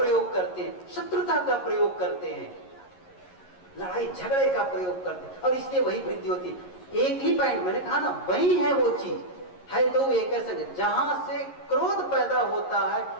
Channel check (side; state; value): right; late; 11 ms